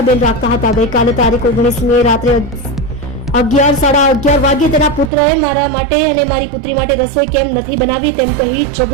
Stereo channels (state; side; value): drops out; left; at 5.1 s